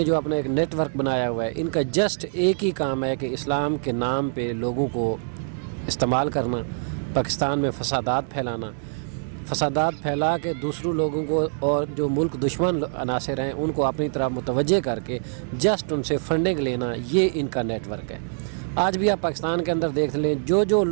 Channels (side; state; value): left; silent; digital silence